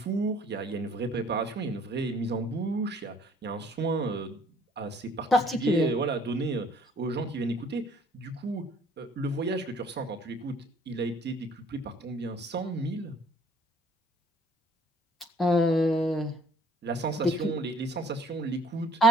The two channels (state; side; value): normal; both; correlation 0.57